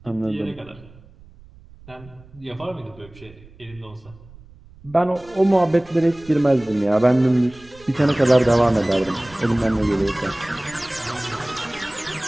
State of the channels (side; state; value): right; noise; rumble, 23 dB below the sound